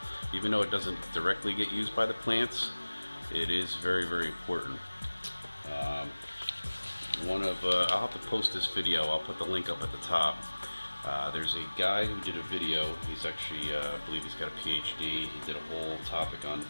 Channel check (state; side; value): inverted; both; correlation -1.00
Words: Even though it doesn't directly get used by the plants, it is very important. I'll have to post this video. I'll put the link up at the top. There's a guy who did a video. He's actually, I believe he's got a PhD. He did a whole topic on